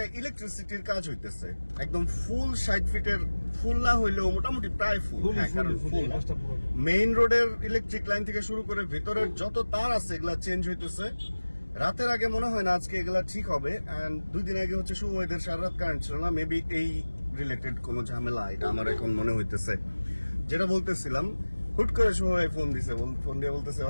ইলেকট্রিসিটির কাজ হইতেছে, একদম ফুল 60 ফিটের, ফুল না হইলেও মোটামুটি প্রায় ফুল। কারণ ফুল মেইন রোডের ইলেকট্রিক লাইন থেকে শুরু করে ভেতরের যত তার আছে এগুলা চেঞ্জ হইতেছে। রাতের আগে মনে হয় না আজকে এগুলা ঠিক হবে। এন্ড 2 দিন আগে হচ্ছে শুভ ওয়েদার, সারা রাত কারেন্ট ছিল না। মেবি এই রিলেটেড কোনো ঝামেলা, এটা আমার এখন মনে হইতেছে। যেটা বলতেছিলাম, হুট করে শুভ ভাই ফোন দিছে, ফোন দিয়ে বলতেছে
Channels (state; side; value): inverted; both; correlation -1.00